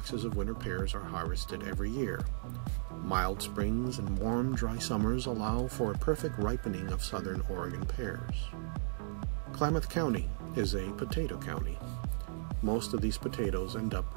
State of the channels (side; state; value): left; silent; digital silence